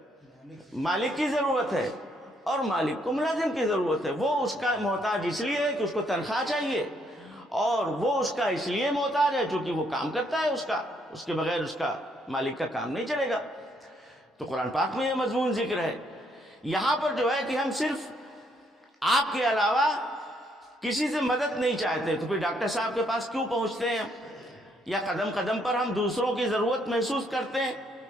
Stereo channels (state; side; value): normal; both; correlation 0.71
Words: مالک کی ضرورت ہے اور مالک کو ملازم کی ضرورت ہے. وہ اس کا محتاج اس لیے ہے کہ اس کو تنخواہ چاہیے، اور وہ اس کا اس لیے محتاج ہے چونکہ وہ کام کرتا ہے اس کے بغیر اس کا مالک کا کام نہیں چلے گا. تو قرآن پاک میں یہ مضمون ذکر ہے. یہاں پر جو ہے کہ ہم صرف آپ کے علاوہ کسی سے مدد نہیں چاہتے، تو پھر ڈاکٹر صاحب کے پاس کیوں پہنچتے ہیں، یا قدم قدم پر ہم دوسروں کی ضرورت محسوس کرتے ہیں؟